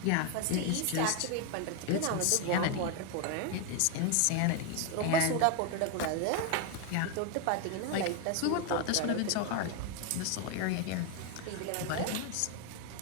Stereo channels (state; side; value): different; both; correlation 0.01